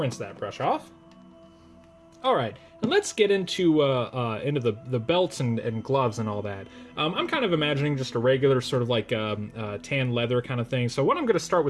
that brush off. All right, and let's get into the belts and gloves and all that. I'm kind of imagining just a regular sort of like tan leather kind of thing. So what I'm going to start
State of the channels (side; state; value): both; identical; correlation 1.00